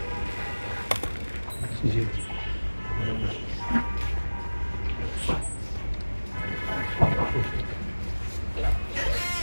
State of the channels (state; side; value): inverted; both; correlation -1.00